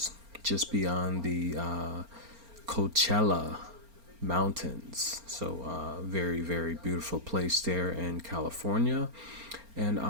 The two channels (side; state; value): left; late; 4.3 ms